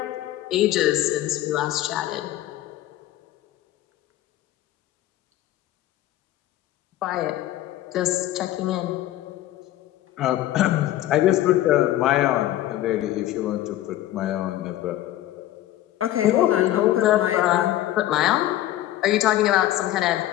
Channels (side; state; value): right; quieter; 14.0 dB